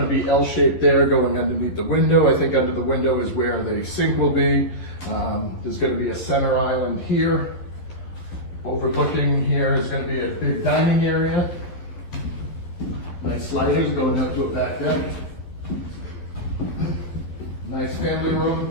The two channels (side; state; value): right; late; 11 ms